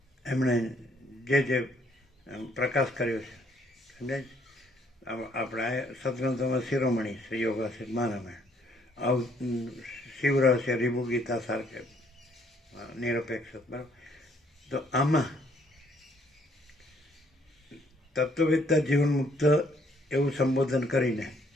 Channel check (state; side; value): normal; both; correlation 0.66